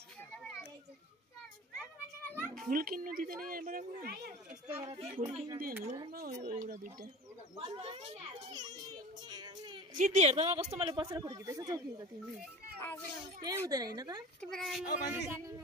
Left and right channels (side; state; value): both; normal; correlation 0.37